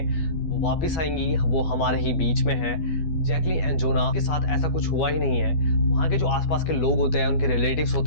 वो वापस आएंगी, वो हमारे ही बीच में हैं। जैकलीन एंड जोना के साथ ऐसा कुछ हुआ ही नहीं है। वहाँ के जो आसपास के लोग होते हैं, उनके रिलेटिव्स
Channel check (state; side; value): late; right; 12 ms